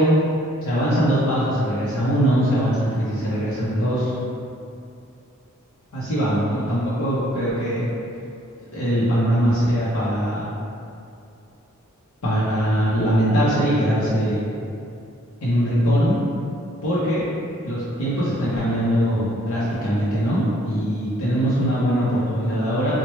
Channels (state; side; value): normal; both; correlation 0.65